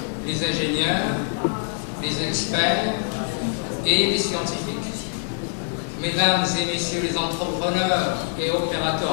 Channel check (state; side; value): silent; right; digital silence